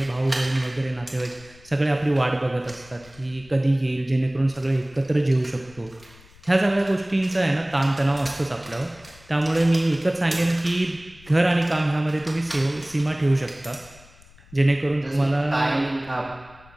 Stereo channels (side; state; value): left; noise; rumble, 24 dB below the sound